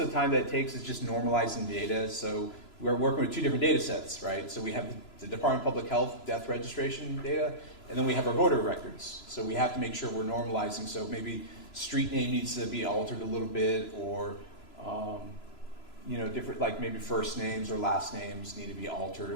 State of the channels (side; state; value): right; late; 3.0 ms